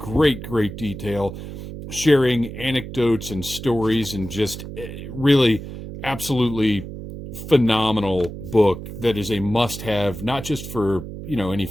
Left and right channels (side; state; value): right; noise; hum, 10 dB below the sound